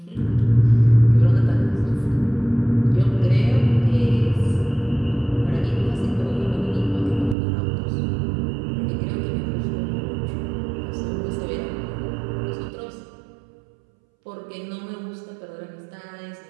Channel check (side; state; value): left; drops out; at 7.4 s